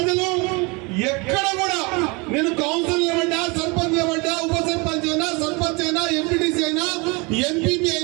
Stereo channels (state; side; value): quieter; left; 28.2 dB